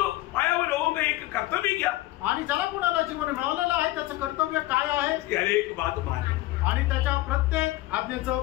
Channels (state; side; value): quieter; right; 17.7 dB